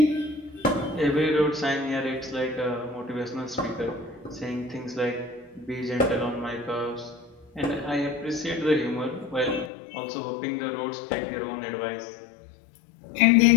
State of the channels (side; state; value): right; drops out; at 9.7 s